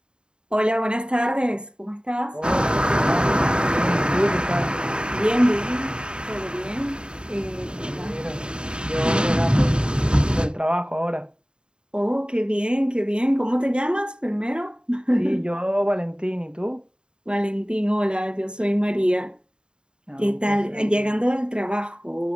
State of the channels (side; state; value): left; late; 0.050 ms